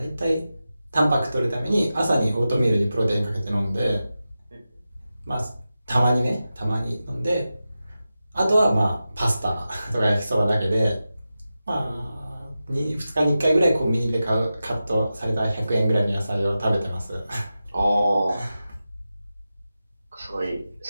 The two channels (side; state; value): both; inverted; correlation -0.93